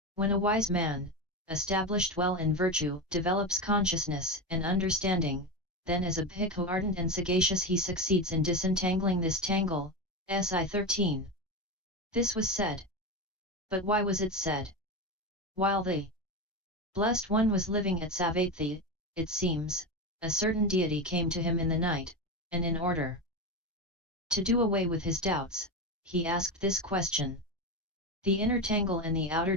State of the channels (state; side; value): normal; both; correlation 0.18